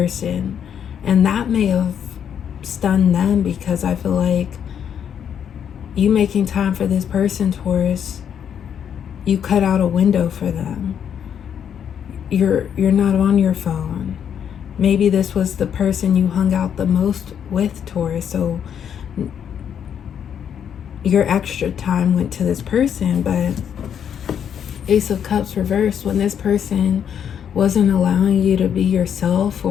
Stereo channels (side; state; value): right; quieter; 8.5 dB